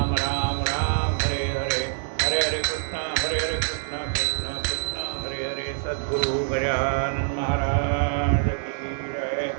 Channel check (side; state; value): left; silent; digital silence